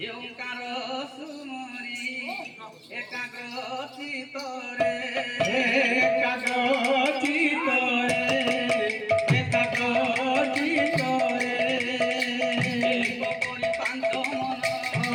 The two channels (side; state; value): both; identical; correlation 1.00